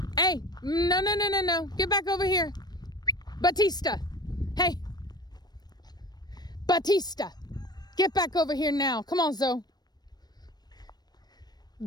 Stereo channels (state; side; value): late; right; 0.19 ms